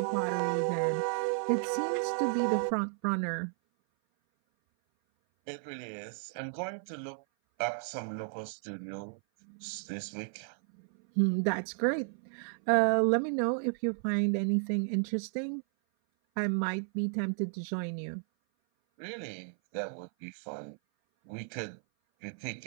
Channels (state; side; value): silent; left; 56 dB below the other